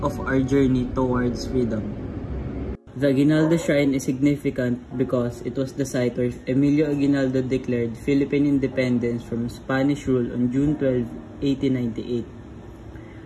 of our journey towards freedom. The Aguinaldo Shrine is significant because it was the site where Emilio Aguinaldo declared Philippine independence from Spanish rule on June 12, 1898.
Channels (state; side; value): identical; both; correlation 1.00